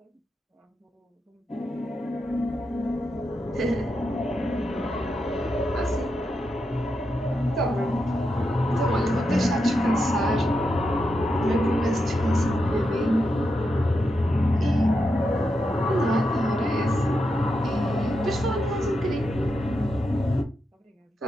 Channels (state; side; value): normal; both; correlation 0.86